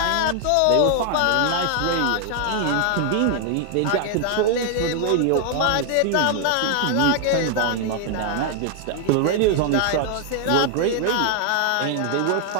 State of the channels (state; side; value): different; both; correlation 0.00